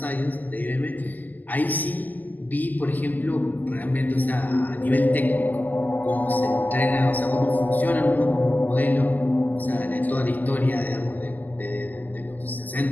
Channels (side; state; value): right; late; 0.085 ms